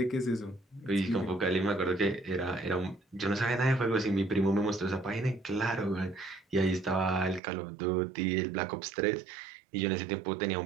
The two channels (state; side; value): drops out; left; at 7.4 s